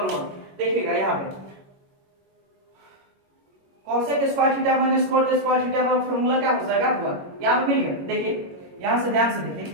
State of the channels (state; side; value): late; left; 21 ms